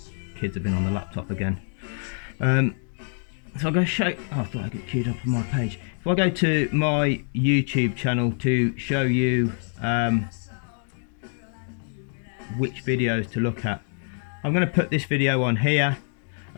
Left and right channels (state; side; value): silent; right; 61 dB below the other